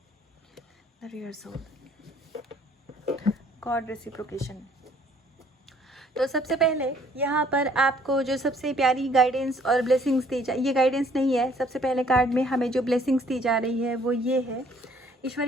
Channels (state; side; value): normal; both; correlation 0.61